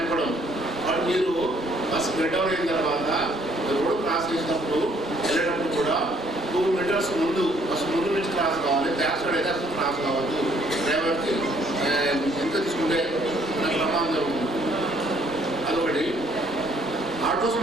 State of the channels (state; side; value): normal; both; correlation 0.64